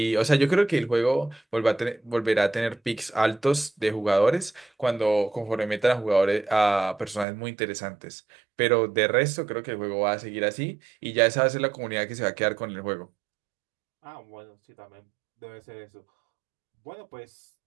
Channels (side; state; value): left; drops out; at 7.2 s